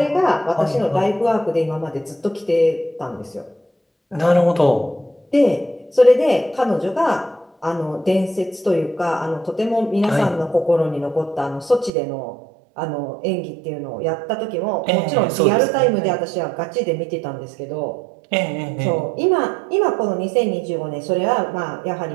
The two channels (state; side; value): drops out; left; at 11.9 s